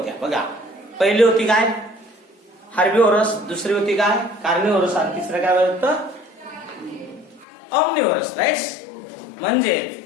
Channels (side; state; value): right; drops out; at 7.5 s